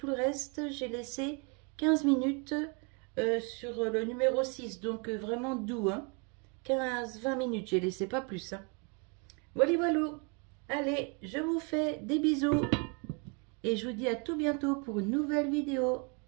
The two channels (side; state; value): left; quieter; 34.0 dB